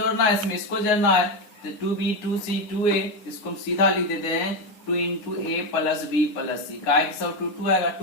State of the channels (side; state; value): right; late; 9.6 ms